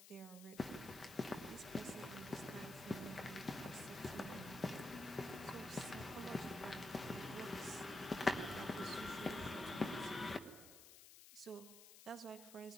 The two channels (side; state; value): left; noise; hiss, 16 dB below the sound